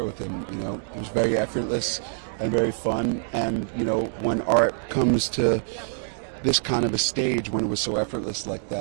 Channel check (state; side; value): silent; left; digital silence